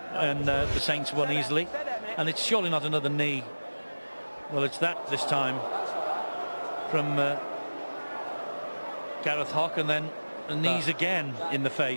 And the Saints won easily. And it's surely not another knee. Well, it's that this time from Gareth Hock, and then the knees again in the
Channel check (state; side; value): inverted; both; correlation -1.00